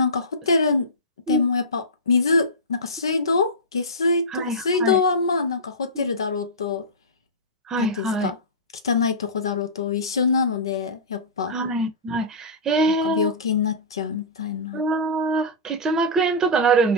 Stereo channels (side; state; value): both; normal; correlation -0.17